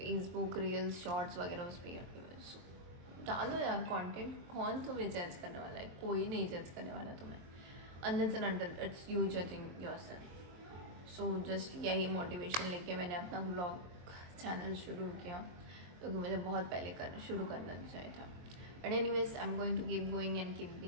reels, shorts वगैरह उस पर ही अटकी हुई है। So, डालो यार कंटेंट, कौन तुम्हें जज करने वाला है? कोई नहीं जज करने वाला तुम्हें, unless and until it's you judging yourself. So just यही मोटिवेशन लेके मैंने अपना ब्लॉग चैनल शुरू किया, क्योंकि मुझे बहुत पहले शुरू करना चाहिए था। But anyways I am going to keep going and keep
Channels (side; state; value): left; late; 23 ms